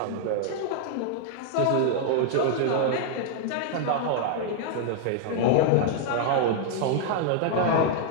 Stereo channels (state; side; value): different; both; correlation 0.00